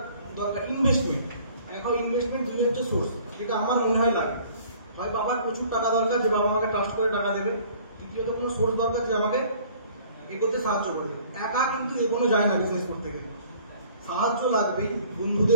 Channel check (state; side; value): inverted; both; correlation -0.54